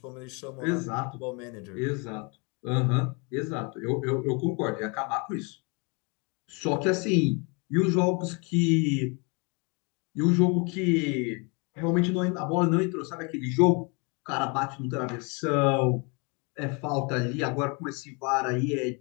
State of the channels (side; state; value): right; quieter; 31.9 dB